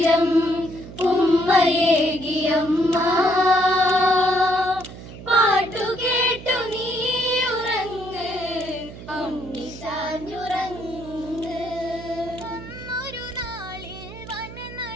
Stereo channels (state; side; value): noise; right; hum, 14 dB below the sound